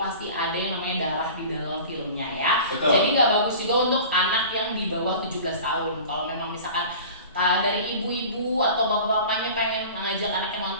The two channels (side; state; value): both; inverted; correlation -0.39